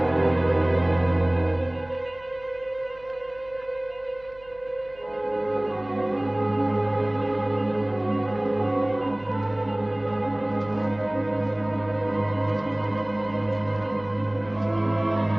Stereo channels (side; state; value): right; noise; hum, 24 dB below the sound